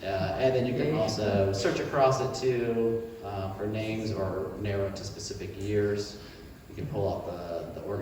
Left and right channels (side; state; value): both; identical; correlation 1.00